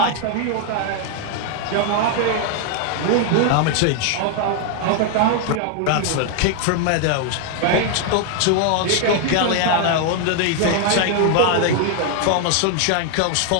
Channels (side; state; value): both; different; correlation 0.01